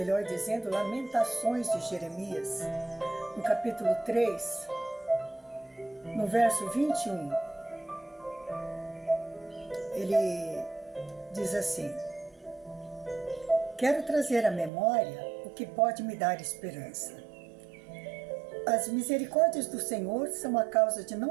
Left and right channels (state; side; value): drops out; left; at 14.7 s